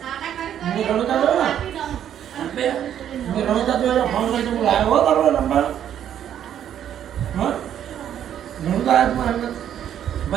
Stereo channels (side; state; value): left; quieter; 10.1 dB